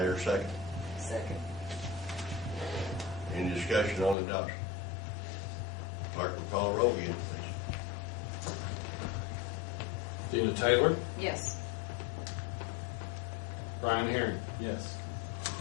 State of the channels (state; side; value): drops out; right; at 4.2 s